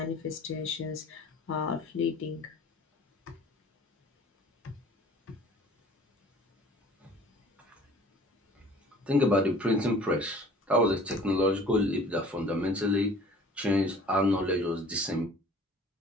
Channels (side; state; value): both; normal; correlation 0.49